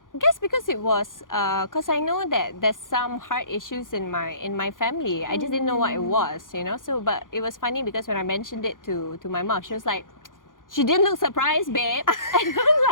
I guess because it was, because I know that there's some heart issues in my family. I just didn't know what it was, So, but it was funny because when I mentioned it to my mom, she was like, she didn't look surprised, babe. And I'm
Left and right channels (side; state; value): right; late; 0.89 ms